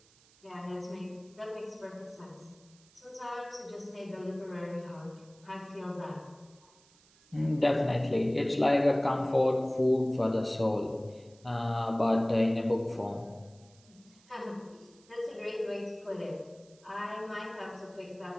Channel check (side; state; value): right; noise; hiss, 28 dB below the sound